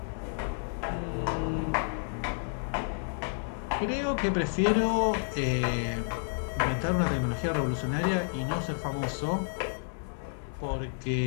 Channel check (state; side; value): silent; right; digital silence